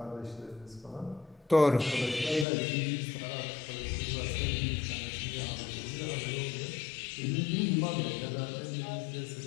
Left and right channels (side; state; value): right; drops out; at 2.5 s